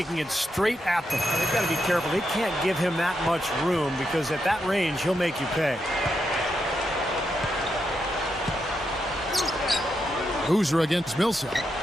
it straight at them. They've got to be careful. They can't give him that much room because at that range, he'll make you pay. Boozer against Millsap.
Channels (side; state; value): both; normal; correlation 0.83